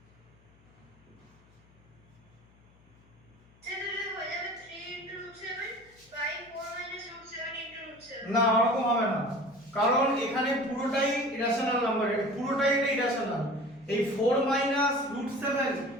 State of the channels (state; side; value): noise; left; hum, 29 dB below the sound